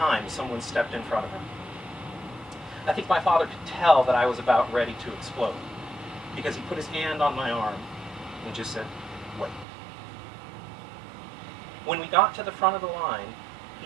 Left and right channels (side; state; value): left; drops out; at 9.7 s